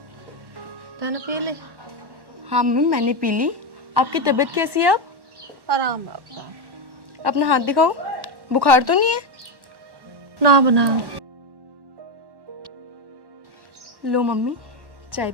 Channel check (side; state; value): left; late; 1.1 ms